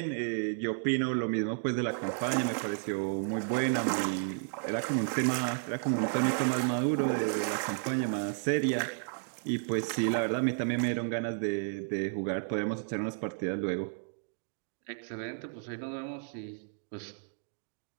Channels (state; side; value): silent; left; digital silence